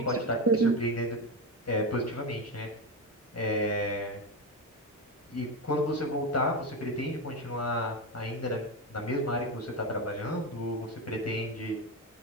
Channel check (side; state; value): both; normal; correlation 0.16